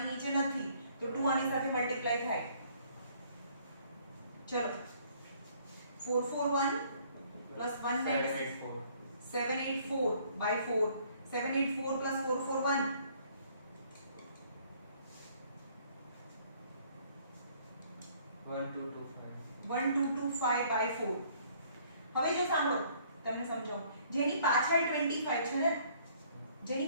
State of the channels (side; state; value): both; inverted; correlation -0.61